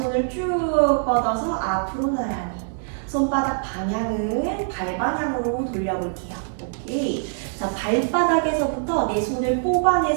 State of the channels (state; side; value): silent; left; 63 dB below the other